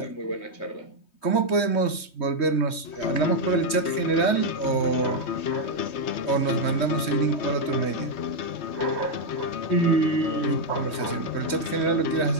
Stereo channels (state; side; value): late; right; 3.2 ms